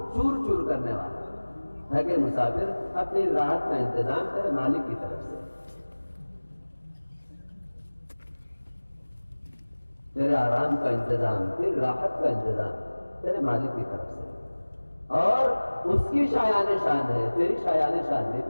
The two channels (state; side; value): inverted; both; correlation -1.00